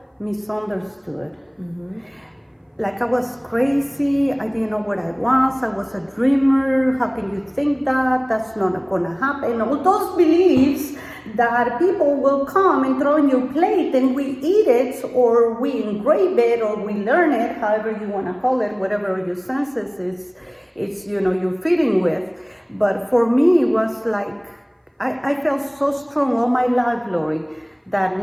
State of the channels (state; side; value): identical; both; correlation 1.00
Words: misunderstood. Mm-hmm. Like I was crazy, I didn't know what I was a dreamer, how can you think that? That's not gonna happen. All those beliefs that people will come and throw in your plate and we eat it or we engrave it or we learn it, however you wanna call it, whatever your senses is you're feeding with. But for me, it was like, I felt so strong all my life, Lori, that